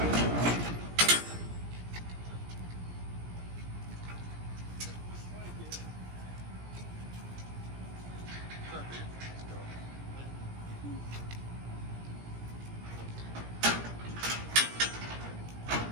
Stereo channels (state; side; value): late; left; 17 ms